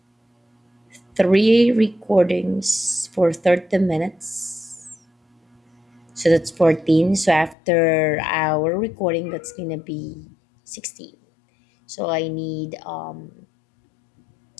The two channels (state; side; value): drops out; right; at 7.6 s